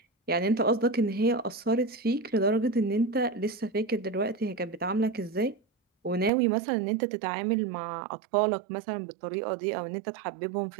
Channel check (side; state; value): left; drops out; at 6.3 s